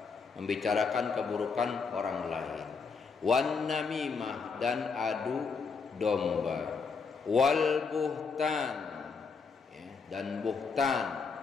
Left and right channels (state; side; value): quieter; right; 5.1 dB